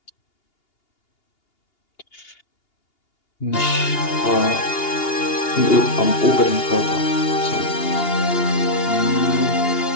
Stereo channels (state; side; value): late; right; 2.8 ms